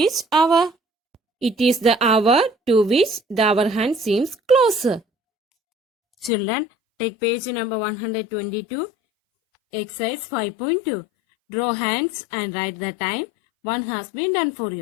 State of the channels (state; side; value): drops out; right; at 6.3 s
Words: hour? It is the hour to which the hour hand seems closer. Children, take page number 122, exercise 5.2. Draw hands and write the time. One has been done for